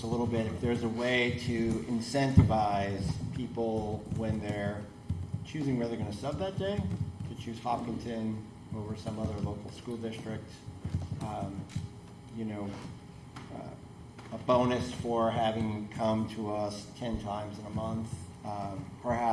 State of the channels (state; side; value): identical; both; correlation 1.00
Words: a little bit. If there's a way to incentivize people when they're choosing where they're going to sub that day, to choose Hopkinton over some other local school district, a bonus for having come to us 10 times in a month,